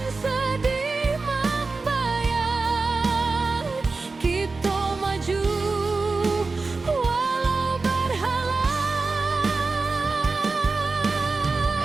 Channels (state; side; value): quieter; left; 3.9 dB